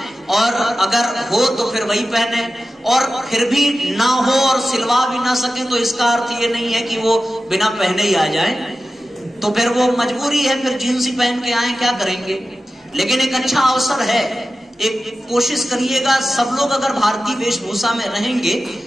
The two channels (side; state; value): both; normal; correlation 0.94